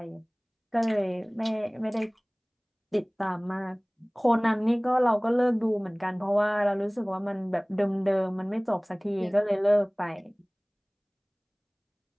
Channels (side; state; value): both; identical; correlation 1.00